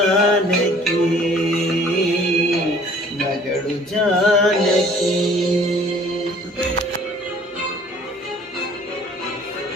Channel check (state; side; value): normal; both; correlation 0.54